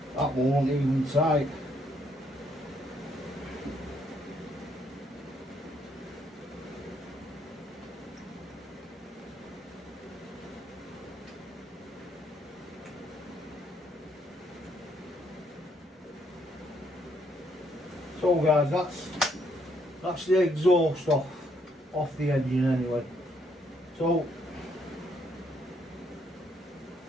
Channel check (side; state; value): both; normal; correlation 0.71